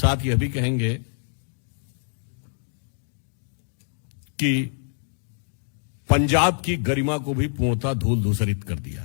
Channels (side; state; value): right; silent; digital silence